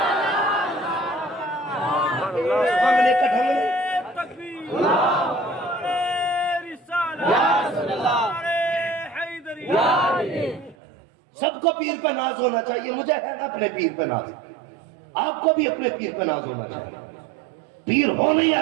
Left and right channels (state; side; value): drops out; left; at 10.8 s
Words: تکبیر نعرہ رسالت نعرہ حیدری. سب کو پیر پہ ناز ہونا چاہیے. مجھے ہے نا اپنے پیر پہ ناز, آپ کو بھی اپنے پیر پہ ناز ہونا چاہیے. پیر ہو نہیں